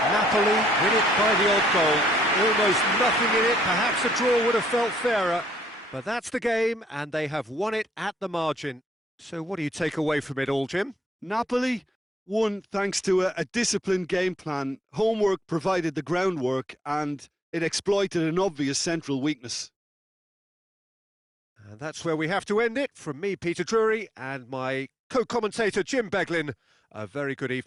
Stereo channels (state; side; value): normal; both; correlation 0.72